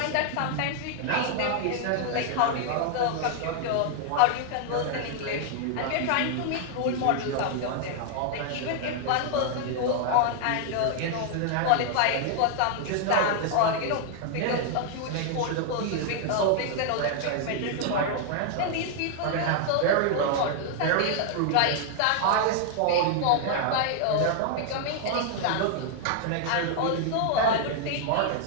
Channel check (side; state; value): both; different; correlation 0.00